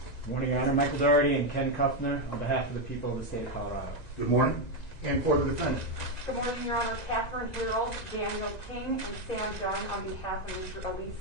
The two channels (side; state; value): right; late; 1.9 ms